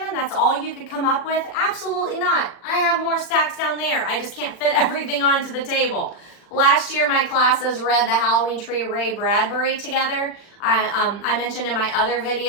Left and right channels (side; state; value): right; late; 40 ms